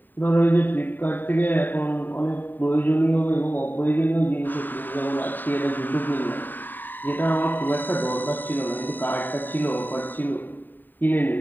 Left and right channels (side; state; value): right; late; 0.090 ms